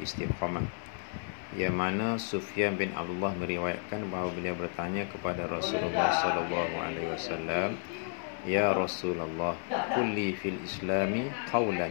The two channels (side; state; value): right; silent; 55 dB below the other